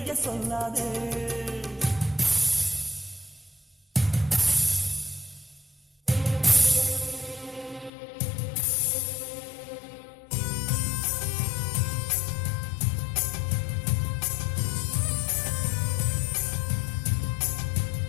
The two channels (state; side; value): drops out; right; at 7.9 s